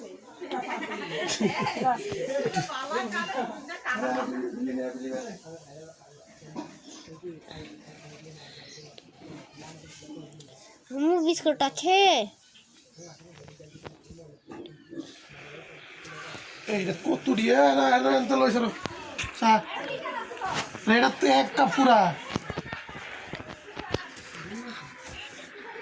বিস্কুট আছে এইটা কত দিয়ে না এত লইছ চা এটা তো এক কাপ পুরা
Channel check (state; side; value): identical; both; correlation 1.00